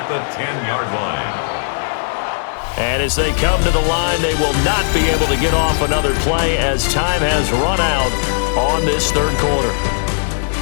the 10-yard line. And as they come to the line, they will not be able to get off another play as time has run out on this third quarter.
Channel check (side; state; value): right; silent; 60 dB below the other